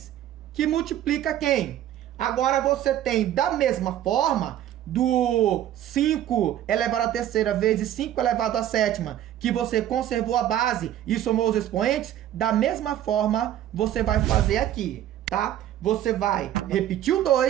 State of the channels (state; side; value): quieter; left; 11.9 dB